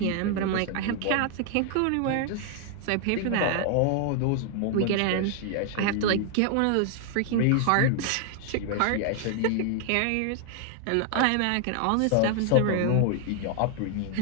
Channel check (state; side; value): different; both; correlation 0.00